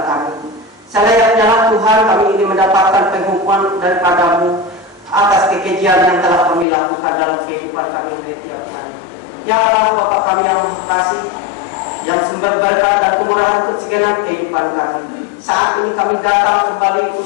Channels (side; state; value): right; drops out; at 6.7 s